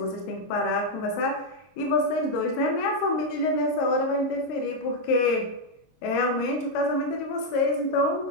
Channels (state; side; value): late; right; 23 ms